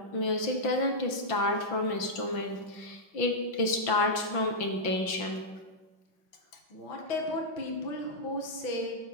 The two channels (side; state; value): right; late; 5.9 ms